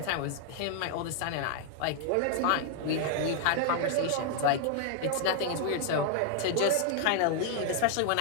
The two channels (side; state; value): both; different; correlation 0.00